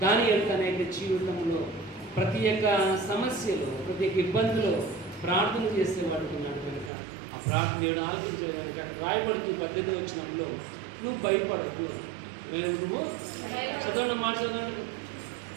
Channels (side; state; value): left; drops out; at 6.9 s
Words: దానియేలు తన యొక్క జీవితంలో ప్రతి ఒక్క సమస్యలో, ప్రతి ఒక్క ఇబ్బందిలో ప్రార్థన చేసేవాడు ఉన్నాడు కనుక ఆ ప్రార్థన దేవుడు ఆలోచించే కనుక రాయబడుతూ 18వ వచనంలో నువ్వు భయపడకు. నువ్వు చదవండి, మాట చదవండి.